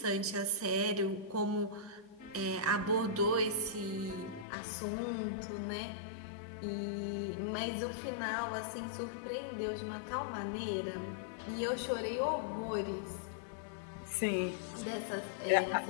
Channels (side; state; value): right; drops out; at 4.5 s